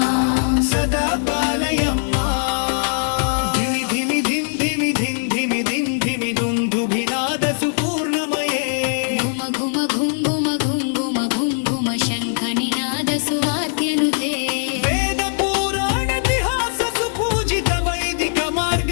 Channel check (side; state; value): right; silent; digital silence